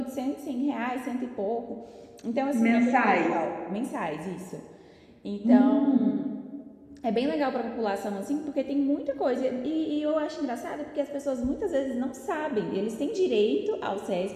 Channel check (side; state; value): both; identical; correlation 1.00